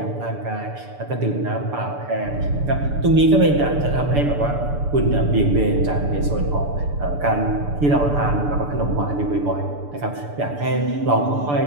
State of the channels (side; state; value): left; late; 6.9 ms